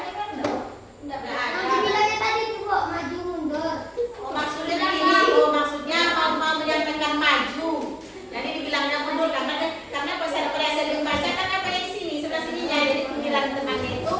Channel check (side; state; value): both; identical; correlation 1.00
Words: Enggak Yang ada. dibilangnya tadi itu kok maju mundur. Oh, maksudnya begini, oh, maksudnya mau menyampaikan maju. Jadi dibilangnya mundur karena bahasa Korea saya baca kan apa yang di sini sebelah sininya. Jadi panggilan temannya itu